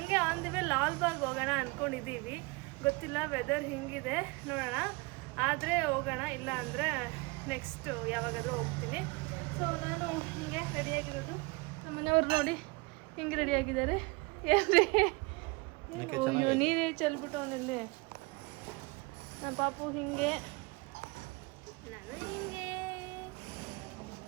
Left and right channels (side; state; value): left; quieter; 26.5 dB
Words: ಆನ್ ದಿ ವೇ ಲಾಲ್ಬಾಗ್ ಹೋಗೋಣ ಅಂದ್ಕೊಂಡಿದ್ದೀವಿ. ಗೊತ್ತಿಲ್ಲ ವೆದರ್ ಹಿಂಗಿದೆ, ನೋಡೋಣ. ಆದರೆ ಹೋಗೋಣ, ಇಲ್ಲ ಅಂದರೆ ನೆಕ್ಸ್ಟ್ ಯಾವಾಗಾದರೂ ಹೋಗ್ತೀನಿ. ಸೊ ನಾನು ಹಿಂಗೆ ರೆಡಿಯಾಗಿರೋದು. ನಮ್ಮ ಮನೆಯವ್ರು ನೋಡಿ ಹಿಂಗೆ ರೆಡಿಯಾಗಿದ್ದಾರೆ. ಏನ್ರಿ ನೀರೇ ಚೆಲ್ಬಿಟ್ಟು ಅವನಲ್ಲಿ. ನಮ್ಮ ಪಾಪು ಹಿಂಗೆ, ನಾನು ಹಿಂಗೆ.